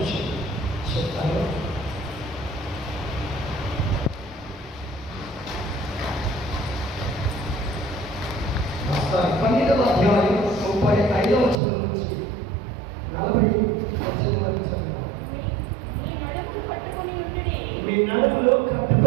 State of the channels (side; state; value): left; drops out; at 11.6 s